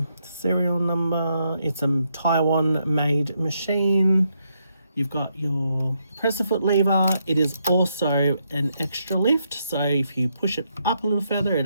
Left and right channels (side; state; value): both; inverted; correlation -0.78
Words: serial number. It's a Taiwan made machine. You've got your presser foot lever. It is also an extra lift, so if you push it up a little further, it